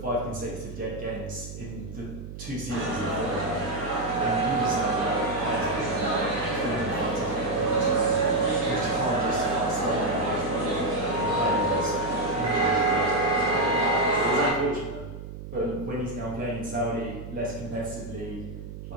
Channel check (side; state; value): right; noise; hum, 11 dB below the sound